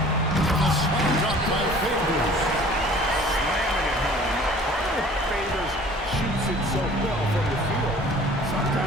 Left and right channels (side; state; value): both; normal; correlation 0.49